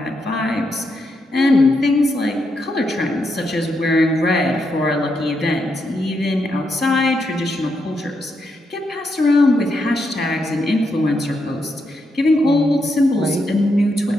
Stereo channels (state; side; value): normal; both; correlation 0.81